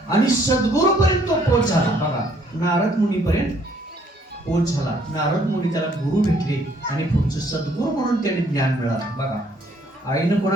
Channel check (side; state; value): both; normal; correlation 0.64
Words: आणि सद्गुरूपर्यंत तो पोच झाला. बघा नारद मुनीपर्यंत पोच झाला. नारद मुनी त्याला गुरु भेटले आणि पुढचं सद्गुरू म्हणून त्याने ज्ञान मिळालं. बघा आईनं